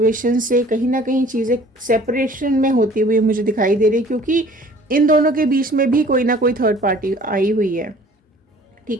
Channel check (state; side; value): normal; both; correlation 0.51